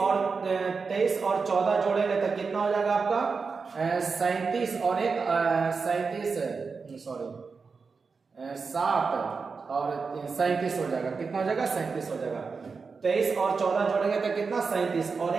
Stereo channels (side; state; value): left; quieter; 4.9 dB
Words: 14 जोड़ेंगे तो कितना हो जाएगा आपका? 37 और 7 और 37 हो जाएगा। कितना हो जाएगा? 37 हो जाएगा। 23 और 14 जोड़ेंगे तो कितना? 37, और